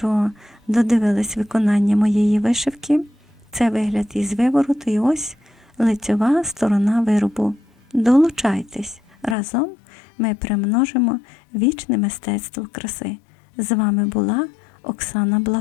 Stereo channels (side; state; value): right; drops out; at 9.3 s